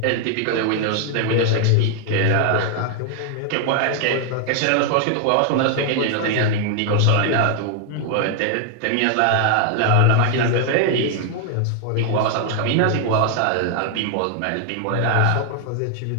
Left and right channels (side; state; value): both; different; correlation 0.00